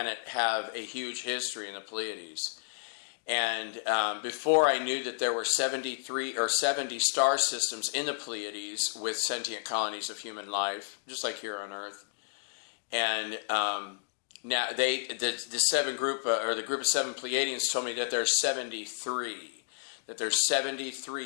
have a huge history in the Pleiades. And before I knew that there were 73 or 70 star systems in the Pleiades with sentient colonies of human life, just like here on Earth. And now the group of 7 Pleiadians told me that there's 73. That there's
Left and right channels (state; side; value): silent; right; digital silence